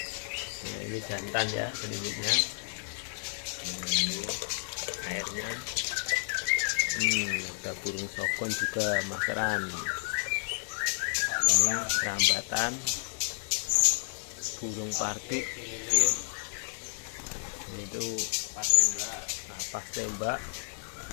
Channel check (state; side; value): silent; right; digital silence